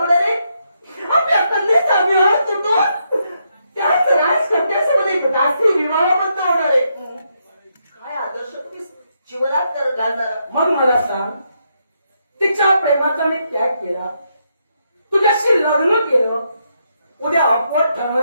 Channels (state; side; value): inverted; both; correlation -0.79